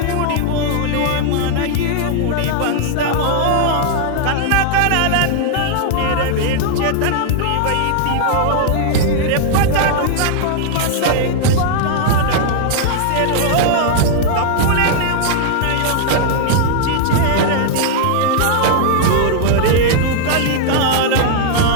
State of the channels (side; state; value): both; different; correlation -0.01